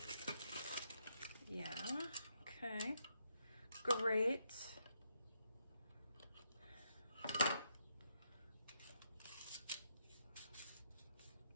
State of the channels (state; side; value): inverted; both; correlation -0.77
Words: Yeah, okay. Great.